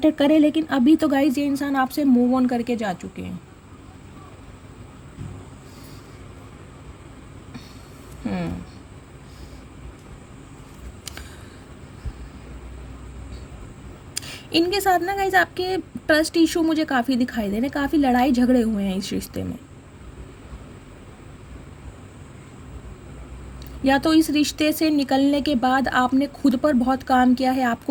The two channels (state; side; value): identical; both; correlation 1.00